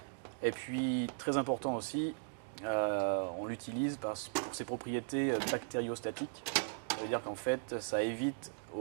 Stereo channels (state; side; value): silent; left; digital silence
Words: Et puis très important aussi, on l'utilise pour ses propriétés bactériostatiques. Ça veut dire qu'en fait, ça